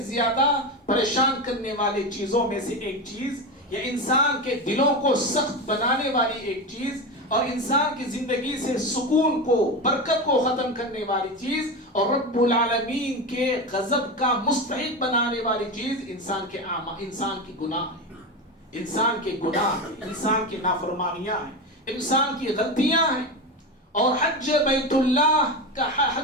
زیادہ پریشان کرنے والی چیزوں میں سے ایک چیز، یا انسان کے دلوں کو سخت بنانے والی ایک چیز، اور انسان کی زندگی سے سکون کو، برکت کو ختم کرنے والی چیز، اور رب العالمین کے غضب کا مستحق بنانے والی چیز انسان کی گناہ ہے، انسان کے گناہ ہیں، انسان کی نافرمانیاں ہیں، انسان کی غلطیاں ہیں۔ اور حج بیت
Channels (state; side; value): normal; both; correlation 0.20